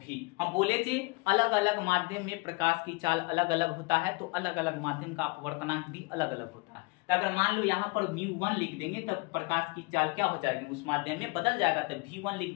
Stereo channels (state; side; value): quieter; right; 27.9 dB